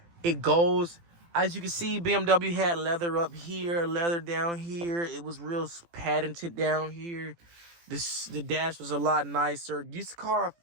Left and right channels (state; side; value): late; left; 18 ms